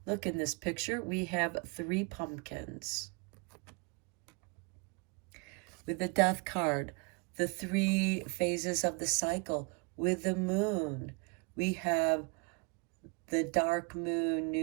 Look in this picture, we have 3 pumpkins. With the death card, the 3 phases of the cycle. With the moon, we have the dark moon,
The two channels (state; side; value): quieter; left; 31.0 dB